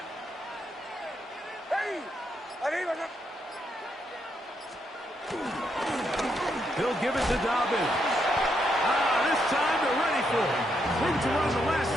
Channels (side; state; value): both; normal; correlation 0.79